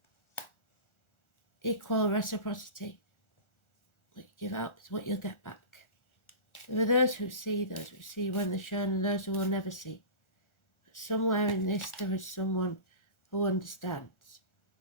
equal reciprocity. What you give out is what you'll get back. There are those who see when they're shown, and those who will never see. But somewhere in this there is someone who understands,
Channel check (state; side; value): late; right; 1.4 ms